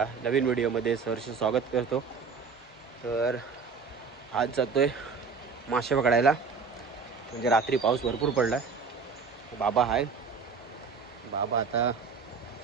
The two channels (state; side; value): quieter; left; 5.2 dB